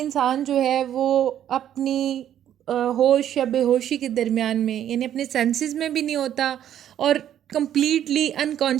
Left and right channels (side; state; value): left; quieter; 10.7 dB